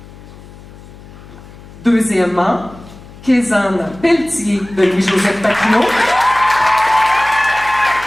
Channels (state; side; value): noise; left; hum, 19 dB below the sound